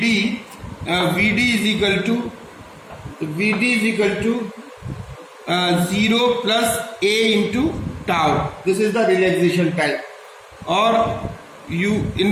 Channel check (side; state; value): both; identical; correlation 1.00